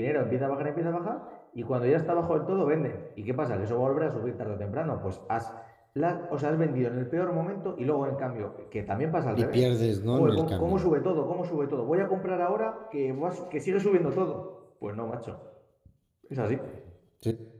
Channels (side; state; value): both; identical; correlation 1.00